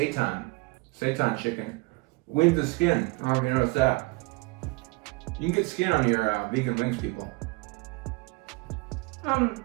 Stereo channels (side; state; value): left; quieter; 25.9 dB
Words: chicken with the skin. I don't know if you noticed that. You can get skin on your vegan wings, people.